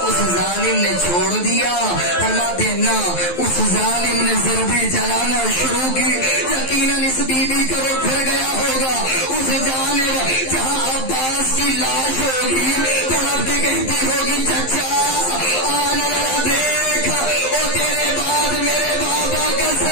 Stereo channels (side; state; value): right; late; 11 ms